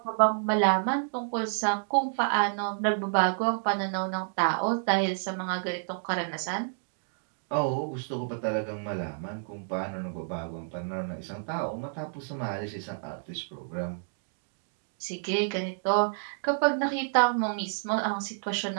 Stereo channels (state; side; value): silent; left; digital silence